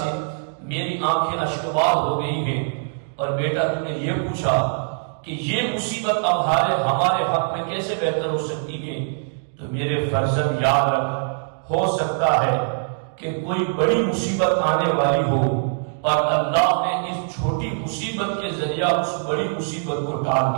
میری آنکھیں اشکبار ہو گئی ہیں۔ اور بیٹا، تم نے یہ پوچھا کہ یہ مصیبت اب ہمارے حق میں کیسے بہتر ہو سکتی ہے، تو میرے فرزند یاد رکھ، ہو سکتا ہے کہ کوئی بڑی مصیبت آنے والی ہو اور اللہ نے اس چھوٹی مصیبت کے ذریعہ اس بڑی مصیبت کو ٹال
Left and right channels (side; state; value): left; silent; digital silence